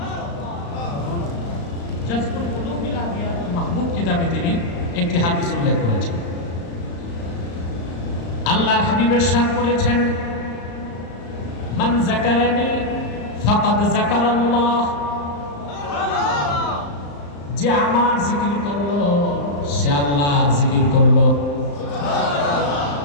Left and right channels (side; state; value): right; late; 35 ms